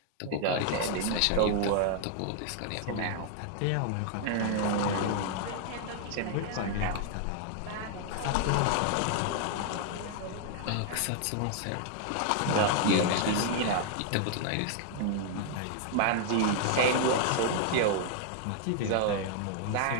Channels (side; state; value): both; different; correlation 0.00